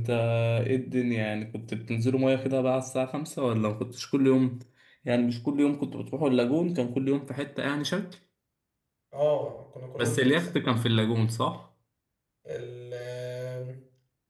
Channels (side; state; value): both; identical; correlation 1.00